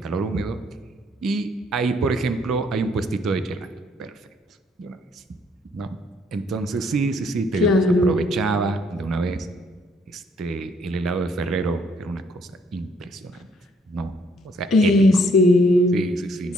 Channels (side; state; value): both; normal; correlation 0.66